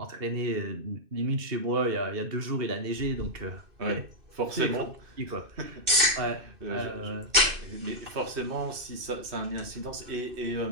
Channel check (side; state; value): left; late; 2.6 ms